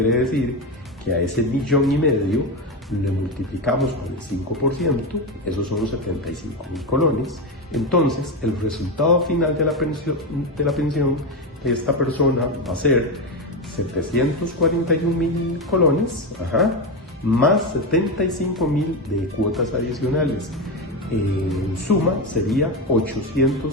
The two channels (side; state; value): both; normal; correlation 0.14